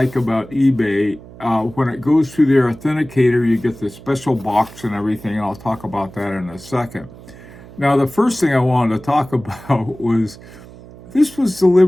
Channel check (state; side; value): noise; right; hum, 19 dB below the sound